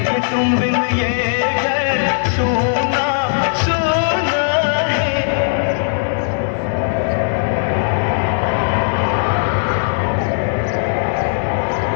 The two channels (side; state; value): right; silent; digital silence